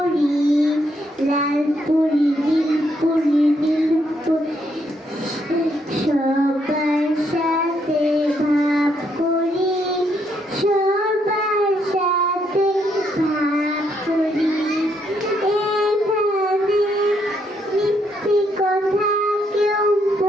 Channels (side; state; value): both; normal; correlation 0.74